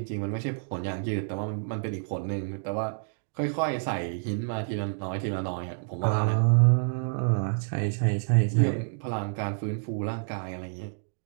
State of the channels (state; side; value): silent; left; digital silence